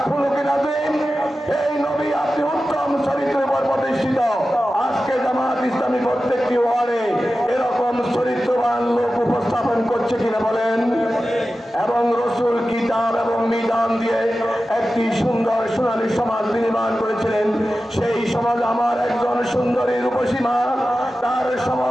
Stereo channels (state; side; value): normal; both; correlation 0.94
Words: হচ্ছে কিনা বলেন? এবং রসুল কিতাব এবং মিজান দিয়ে একটি সুন্দর সোনালী সমাজ নির্মাণ করেছিলেন। সেই সমাজ আমার একজন সুন্দরী রূপসীমা তার